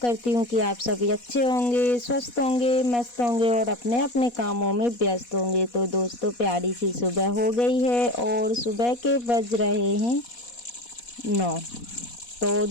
हूँ कि आप सभी अच्छे होंगे, स्वस्थ होंगे, मस्त होंगे और अपने अपने कामों में व्यस्त होंगे। तो दोस्तों, प्यारी सी सुबह हो गई है और सुबह के बज रहे हैं 9। तो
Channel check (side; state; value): right; late; 4.2 ms